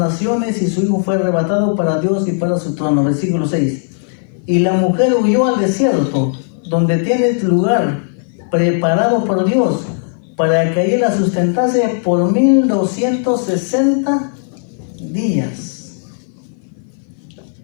y su hijo fue arrebatado para Dios y para su trono. Versículo 6. Y la mujer huyó al desierto, donde tiene lugar preparado por Dios, para que allí la sustentase por 1260 días.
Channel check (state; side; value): silent; right; 58 dB below the other